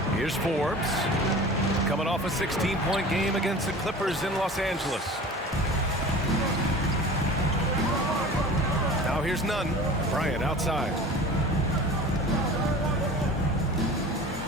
Here's Forbes. Coming off a 16-point game against the Clippers in Los Angeles. Now here's Nunn. Bryant outside.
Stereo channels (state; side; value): normal; both; correlation 0.39